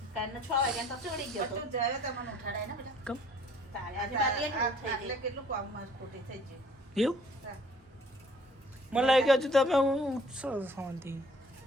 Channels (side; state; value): both; normal; correlation 0.56